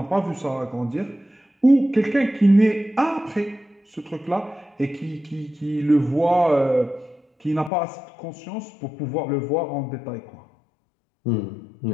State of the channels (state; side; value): drops out; right; at 7.7 s